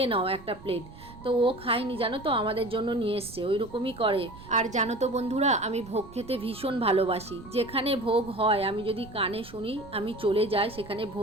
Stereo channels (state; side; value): noise; right; rumble, 18 dB below the sound